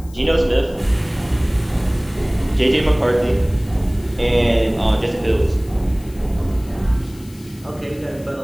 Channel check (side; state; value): left; noise; hiss, 24 dB below the sound